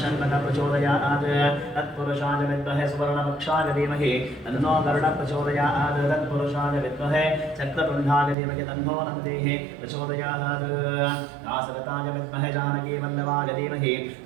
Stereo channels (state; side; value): drops out; left; at 8.3 s